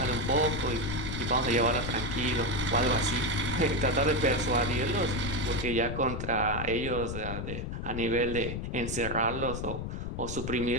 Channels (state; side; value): noise; left; rumble, 5 dB below the sound